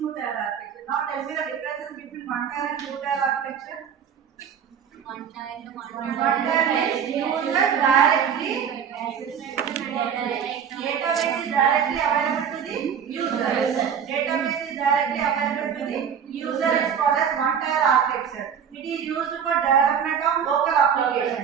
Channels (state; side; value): quieter; left; 7.7 dB